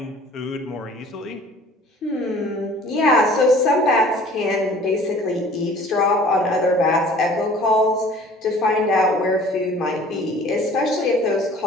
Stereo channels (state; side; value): normal; both; correlation 0.49